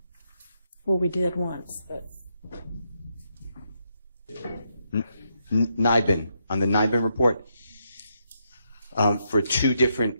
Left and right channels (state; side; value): inverted; both; correlation -0.79